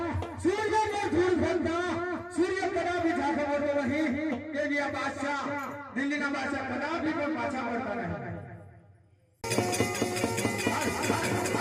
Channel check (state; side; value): identical; both; correlation 1.00